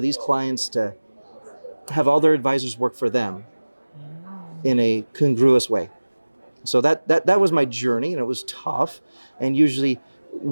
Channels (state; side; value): inverted; both; correlation -1.00